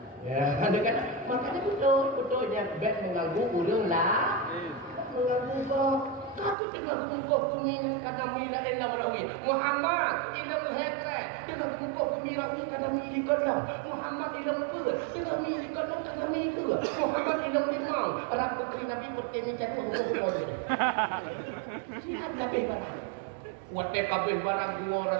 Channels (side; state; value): left; drops out; at 6.6 s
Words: Ya, ada kan makanya betul dia baik mengganggu orang lah. Mengganggu kok. Tapi tengah untuk pemimpin kata mila elam rawi Muhammad ilam hekre tengah untuk pemimpin kata miliklah Muhammad ilam pula tengah miliklah kata miliklah Muhammad ilam limang anak putri Nabi putri jatuh hukum kau ini sihat kabeh barang waktu kabeh barang dua